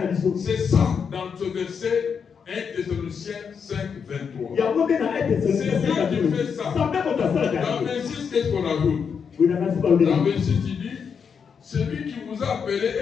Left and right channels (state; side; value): quieter; right; 6.5 dB